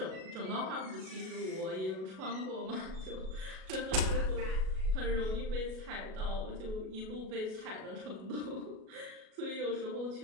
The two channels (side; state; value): left; late; 37 ms